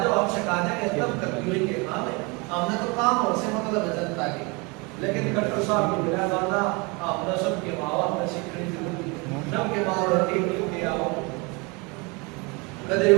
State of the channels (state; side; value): quieter; left; 28.6 dB